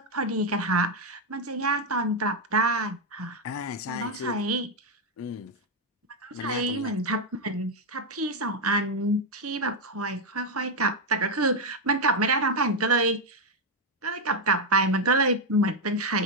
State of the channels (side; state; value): both; normal; correlation 0.03